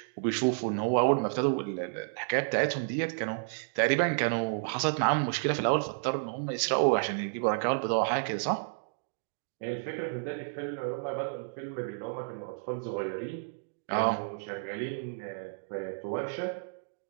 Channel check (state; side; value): silent; left; digital silence